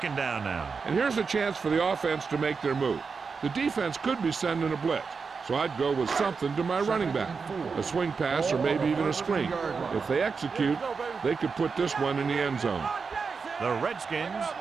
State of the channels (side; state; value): left; quieter; 5.2 dB